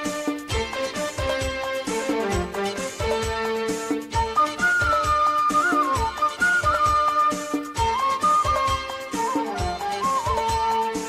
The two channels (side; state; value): both; identical; correlation 1.00